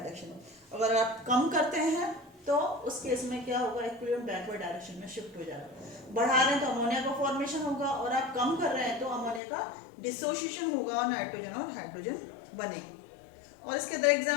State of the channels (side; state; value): right; drops out; at 9.4 s